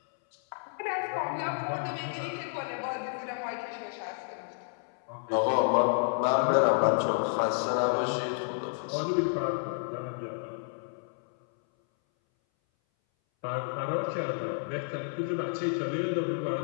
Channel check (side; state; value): right; silent; 57 dB below the other